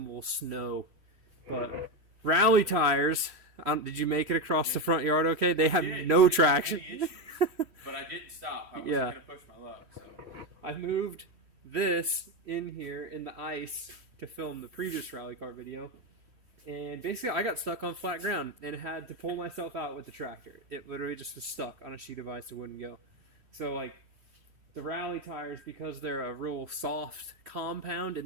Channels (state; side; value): late; left; 3.1 ms